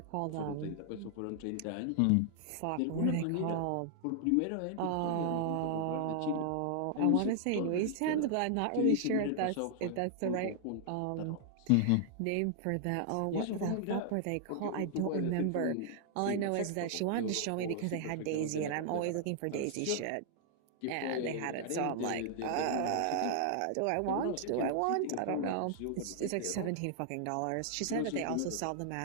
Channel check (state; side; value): different; both; correlation 0.00